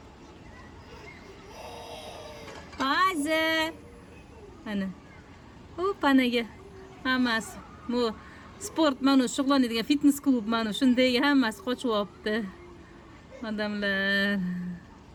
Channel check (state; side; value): identical; both; correlation 1.00